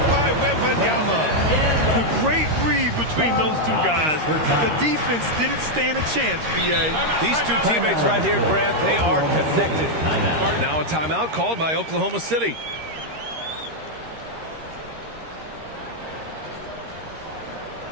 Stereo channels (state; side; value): late; left; 13 ms